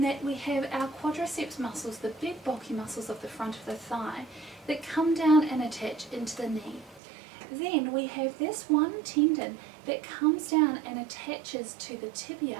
that we have our quadriceps muscles, the big bulky muscles of the front of the thigh, that come down and attach into the knee. Then we have this one tendon that comes down and attaches to the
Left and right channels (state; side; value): drops out; left; at 7.0 s